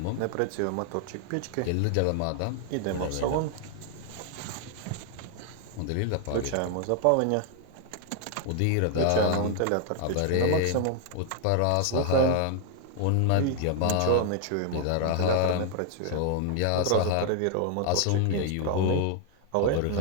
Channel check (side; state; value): both; different; correlation 0.00